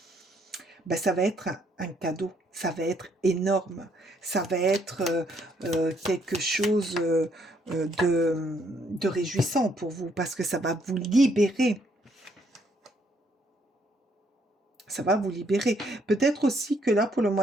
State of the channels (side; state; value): both; normal; correlation 0.70